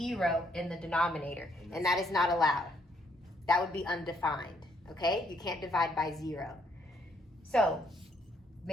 in the denominator, and that is not allowed. That would be undefined, okay? You can't divide by 0. So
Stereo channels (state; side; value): normal; both; correlation 0.70